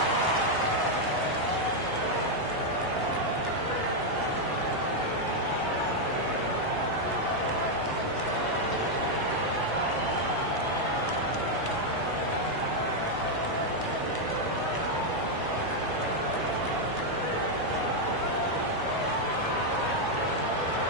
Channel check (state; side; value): late; left; 1.0 ms